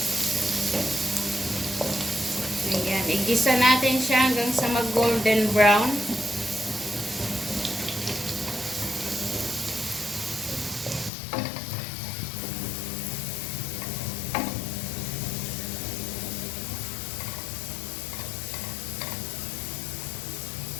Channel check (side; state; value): right; drops out; at 11.1 s